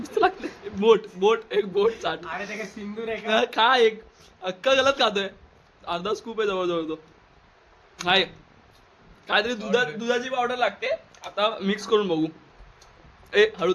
लागते बोट एक बोट चाट सिंदूर आहे खा एक अक्का गलत खातोय अर्धा स्कूप आहे जवळजवळ तो काय काहीतरी दुधाची पावडर लागते आता मिक्स करून बघू ए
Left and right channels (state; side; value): identical; both; correlation 1.00